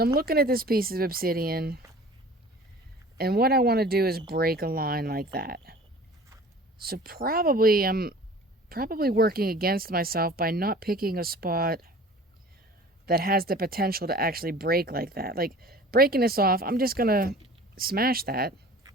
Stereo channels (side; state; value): both; normal; correlation 0.44